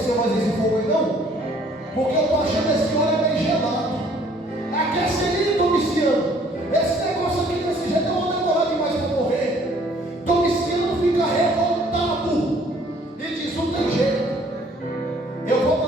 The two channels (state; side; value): normal; both; correlation 0.59